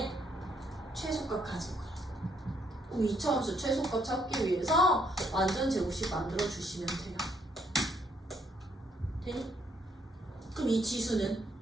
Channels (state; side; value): normal; both; correlation 0.71